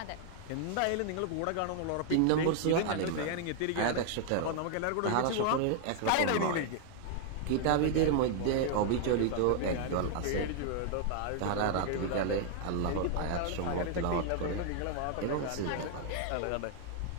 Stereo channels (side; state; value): both; different; correlation 0.00